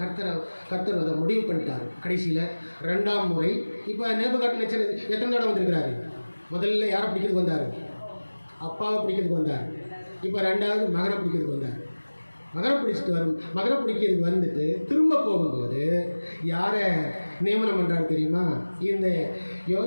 அதை முடிவு பண்ணிட்டார். கடைசியில் 2ஆம் முறை இப்போ நேபுகாத்நேச்சர் எத்தனை தடவை வந்திருக்கிறாரு? முதல்ல யாரை பிடிக்கிறதுக்கு வந்தார்? அப்பாவை பிடிக்கிறதுக்கு வந்தார். இப்போ 2வது மகனை பிடிக்கிறதுக்கு வந்தார். மகனை பிடிக்கிறதுக்கு வந்துட்டு திரும்ப போகும்போது யாரை நியமனம் பண்ணுறாரு தெரியுமா? இந்த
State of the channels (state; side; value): inverted; both; correlation -1.00